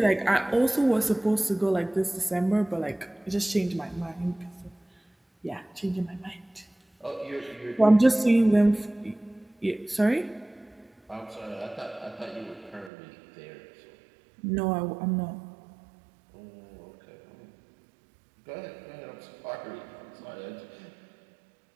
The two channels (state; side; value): drops out; left; at 12.9 s